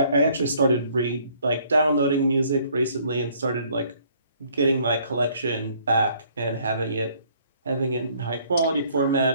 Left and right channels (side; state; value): both; inverted; correlation -0.62